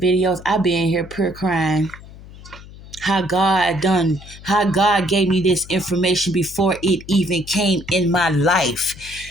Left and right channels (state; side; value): noise; left; hum, 18 dB below the sound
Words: I be in here pure crying. How God gave me this information before it even came in my life.